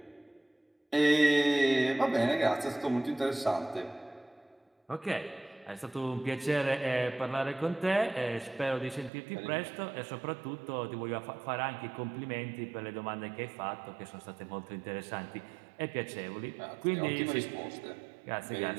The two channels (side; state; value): left; drops out; at 9.1 s